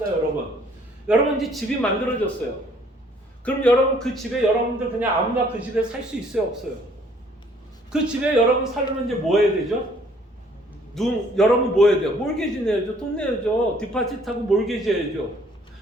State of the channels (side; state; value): both; normal; correlation 0.60